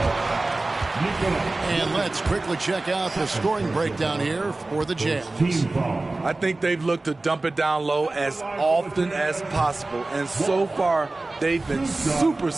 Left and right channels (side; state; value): left; quieter; 3.1 dB